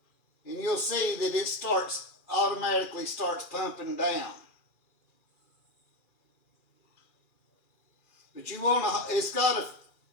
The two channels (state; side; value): late; right; 2.4 ms